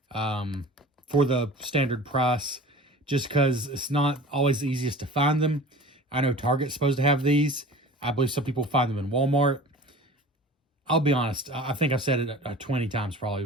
for the standard price, just because it's not always the easiest to find them. I know Target's supposed to have these. I believe some people find them in Walmart. I'll be honest, I think I've said it 20 times probably,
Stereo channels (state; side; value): normal; both; correlation 0.40